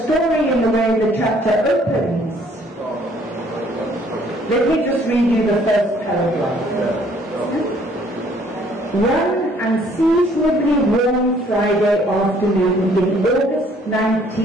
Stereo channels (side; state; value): both; normal; correlation 0.61